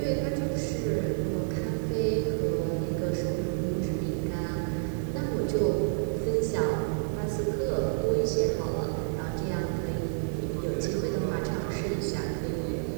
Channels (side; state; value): left; silent; 58 dB below the other